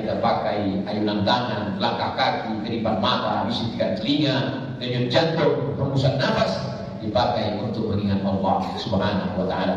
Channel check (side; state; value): both; identical; correlation 1.00